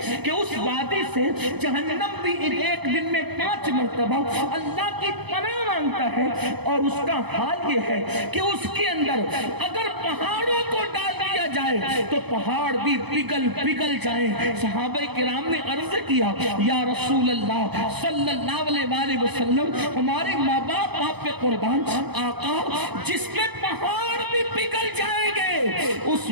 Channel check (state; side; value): late; left; 0.98 ms